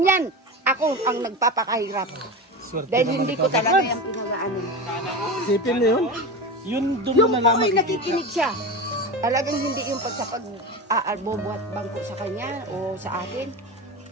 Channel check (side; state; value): both; normal; correlation 0.25